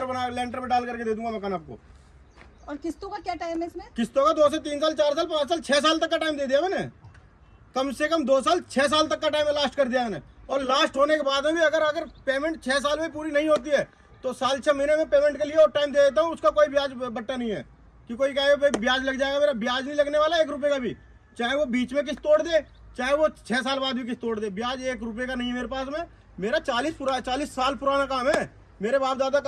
में डाल करके दे दूंगा मकान आपको। और किस्तों का क्या टाइम है इसमें? किस्तों का 2 से 3 साल, 4 साल, 5 साल, 6 साल तक का टाइम दे दिया मैंने। कम से कम 2 साल 6 साल तक का टाइम लास्ट कर दिया मैंने। और लास्ट होने के बाद में भी अगर पेमेंट 6 साल में पूरी नहीं होती है तो साल 6 महीने में पेमेंट के लिए और टाइम दे देता हूँ। उसका कोई ब्याज बट्टा नहीं है कि कोई कहे भाई ब्याज लग जाएगा, मेरा ब्याज नहीं लगने वाला 1 रुपए का भी। चाहे वो बीच में किस्त तोड़ दे, चाहे वो 6 साल बाद भी किस्त तोड़ दे, ब्याज 1 रुपए का नहीं है मेरे पास में। मेरा 40 साल पुराना काम है। मेरे बाप दादा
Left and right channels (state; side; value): identical; both; correlation 1.00